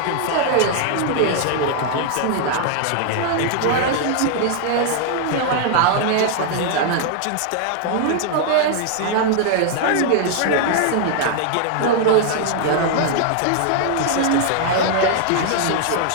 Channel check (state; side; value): different; both; correlation 0.00